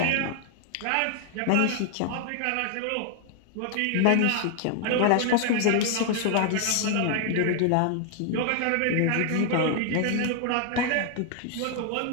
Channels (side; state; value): both; different; correlation 0.00